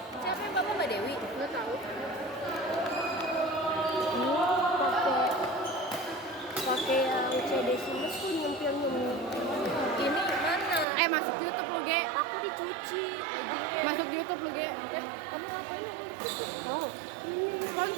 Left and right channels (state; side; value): drops out; left; at 10.9 s